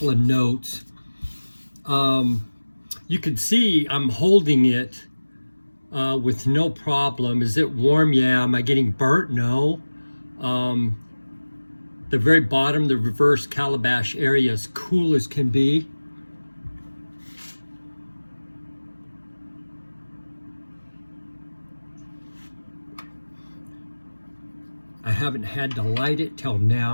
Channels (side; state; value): both; inverted; correlation -1.00